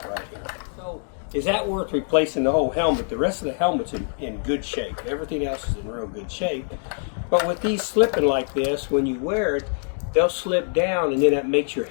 right here. So is that worth replacing the whole helmet? The rest of the helmet's in good shape. Everything else is in real good shape. But with these slipping like this, when you wear it, they'll slip down and then that makes your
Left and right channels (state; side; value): silent; right; 56 dB below the other